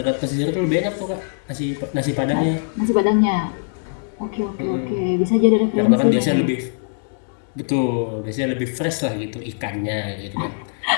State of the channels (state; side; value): silent; right; digital silence